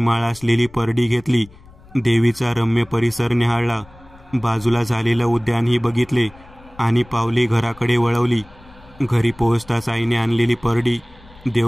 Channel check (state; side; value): noise; left; rumble, 24 dB below the sound